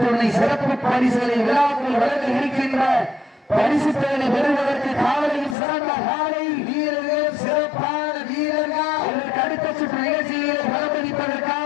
சிறப்பு பரிசுகளை விழாக்கள் வழங்க இருக்கின்ற பரிசு தொகையை பெறுவதற்கு காவலில் சிறந்த காலை வீரர்கள், சிறப்பான வீரர்கள். இதற்கு அடுத்த சுற்று நிகழ்ச்சிகளை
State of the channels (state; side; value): drops out; right; at 5.6 s